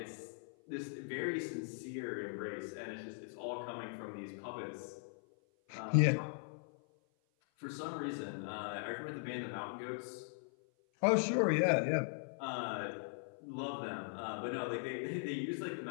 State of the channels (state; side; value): silent; right; 51 dB below the other